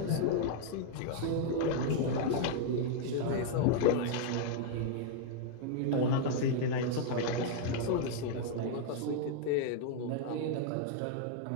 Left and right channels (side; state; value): both; different; correlation -0.01